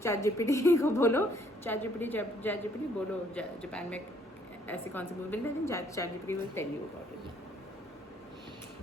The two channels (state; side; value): normal; both; correlation 0.64